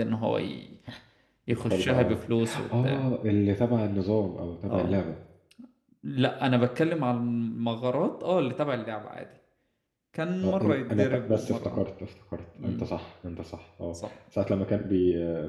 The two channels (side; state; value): both; identical; correlation 1.00